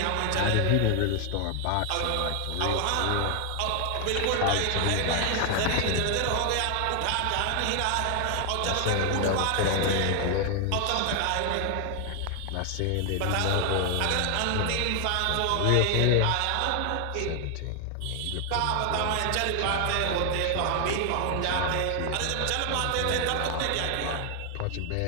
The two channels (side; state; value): both; different; correlation 0.00